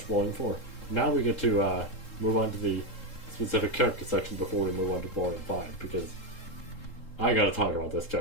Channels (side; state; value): right; late; 3.7 ms